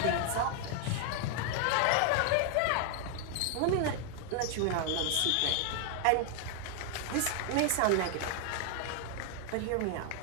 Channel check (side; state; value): both; different; correlation 0.00